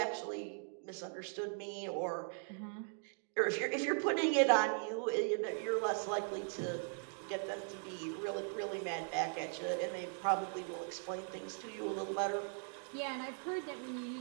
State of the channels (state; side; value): silent; left; 52 dB below the other